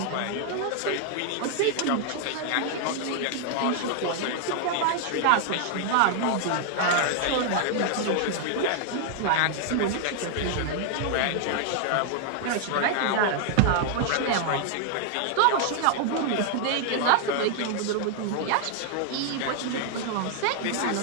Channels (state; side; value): different; both; correlation 0.00